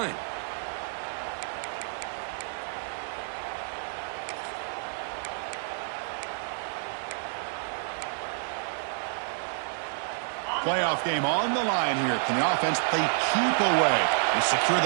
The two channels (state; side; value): silent; left; digital silence